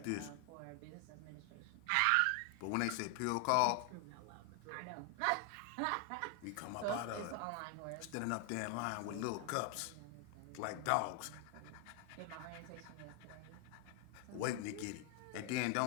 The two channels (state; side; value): different; both; correlation 0.00